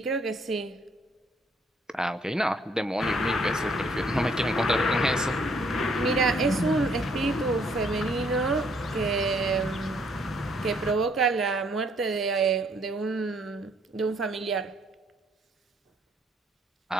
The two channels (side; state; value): both; normal; correlation 0.66